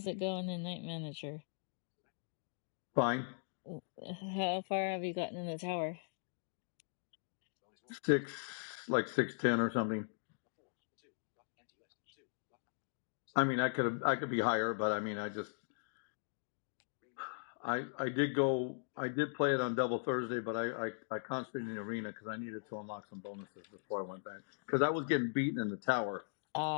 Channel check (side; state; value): right; silent; digital silence